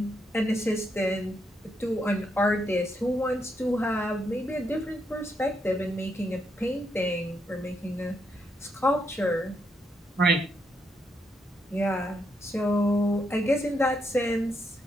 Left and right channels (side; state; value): both; normal; correlation 0.79